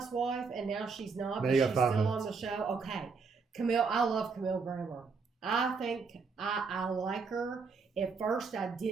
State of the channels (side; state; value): left; quieter; 4.9 dB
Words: and now she's not, but she's still on the show. Okay. Camille, I love Camille Grammer. I think I like her. At first, I